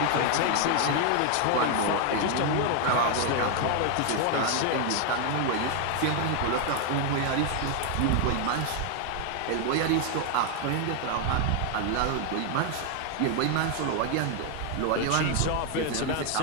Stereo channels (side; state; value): both; different; correlation 0.01